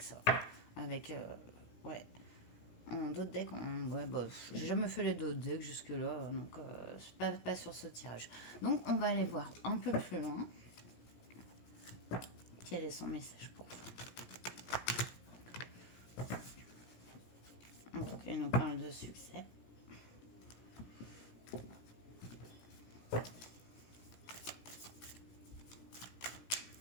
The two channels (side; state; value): right; late; 17 ms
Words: ça, avec ouais. En d'autres decks, ouais, bah, j'ai jamais fait les d'autres decks jusque-là, donc pas sur ce tirage. Donc on va aller voir un peu plus loin. Quel est son message pour vous? Donc il nous parle de succès.